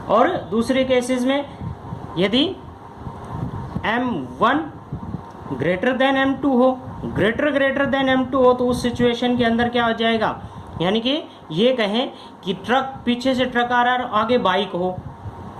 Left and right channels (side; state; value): both; identical; correlation 1.00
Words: और दूसरे केसेस में यदि m1 ग्रेटर देन m2 हो, ग्रेटर देन m2 हो, तो उस सिचुएशन के अंदर क्या हो जाएगा, यानी कि ये कहें कि ट्रक, पीछे से ट्रक आ रहा है, आगे बाइक हो,